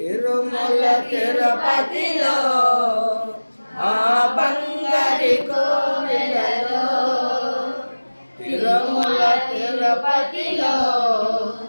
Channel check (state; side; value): inverted; both; correlation -1.00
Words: తిరుపతిలో ఆ బంగారి కోవిలలో, తిరుమల తిరుపతిలో